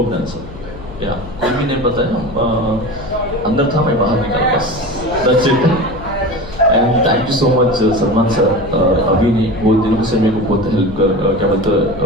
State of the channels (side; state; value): left; noise; hum, 14 dB below the sound